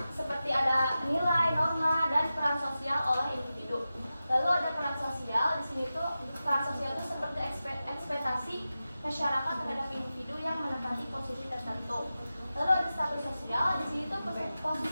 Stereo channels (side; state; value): both; inverted; correlation -0.93